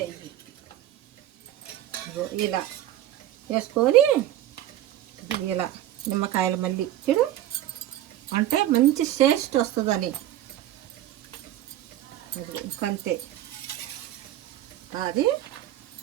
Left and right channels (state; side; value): quieter; left; 13.1 dB